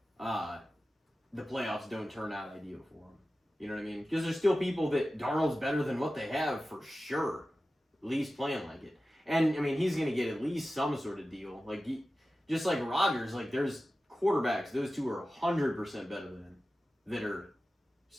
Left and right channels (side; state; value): both; normal; correlation 0.94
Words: the playoffs don't turn out ideal for him. You know what I mean? Because there's still people that Darnold's better than what they have for sure. At least playing like it. And, I mean, he's going to get at least some sort of deal. Like, just like Rodgers, like, there's quarterbacks, those two are 100% better than, that are